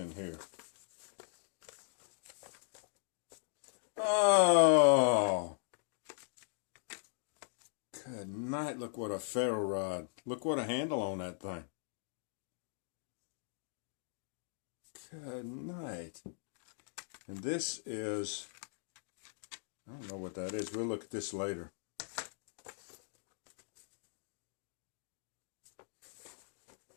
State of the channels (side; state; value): right; silent; digital silence